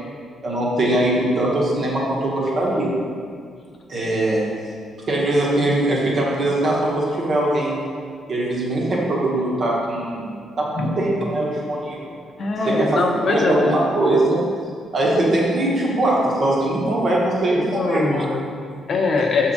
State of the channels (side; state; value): both; normal; correlation 0.75